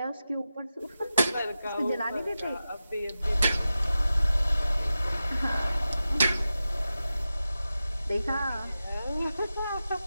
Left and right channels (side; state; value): both; inverted; correlation -0.92